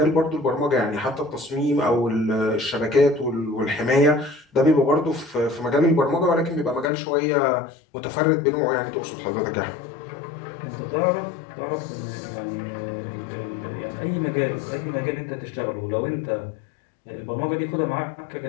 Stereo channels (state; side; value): drops out; right; at 6.9 s